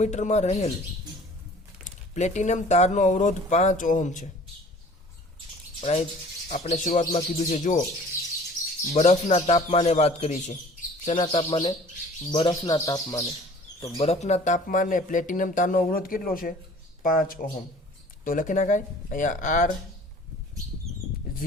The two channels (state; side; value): normal; both; correlation 0.48